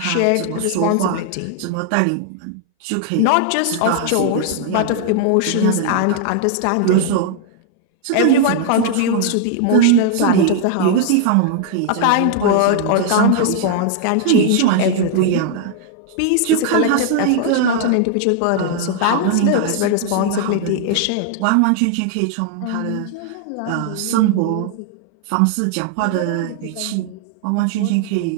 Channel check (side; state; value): both; different; correlation 0.00